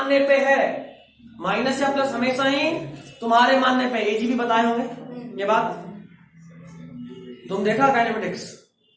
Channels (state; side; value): identical; both; correlation 1.00